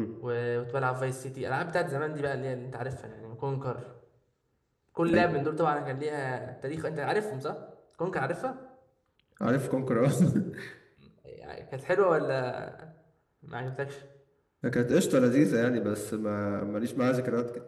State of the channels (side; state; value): both; identical; correlation 1.00